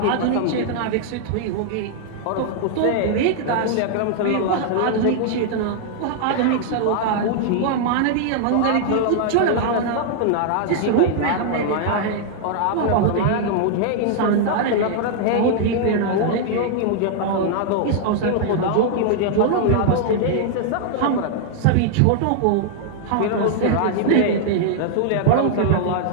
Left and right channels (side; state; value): both; different; correlation -0.01